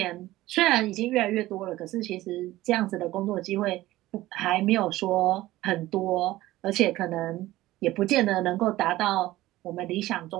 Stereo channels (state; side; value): quieter; left; 16.7 dB